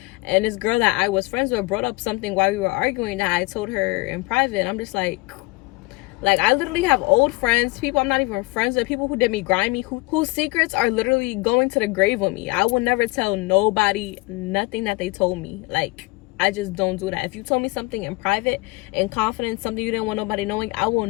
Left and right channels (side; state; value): right; quieter; 23.6 dB